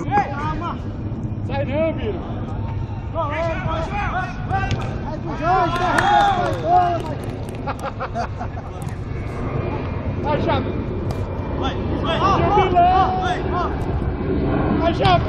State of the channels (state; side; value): identical; both; correlation 1.00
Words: calma. Sai não, Biro. Vai pro Jorge, derruba esse bola, Vai, Chape. Vai. Vai, Chape,